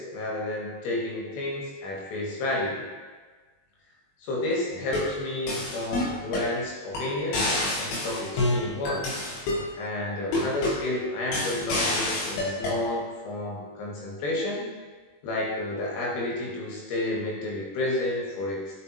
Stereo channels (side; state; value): right; late; 21 ms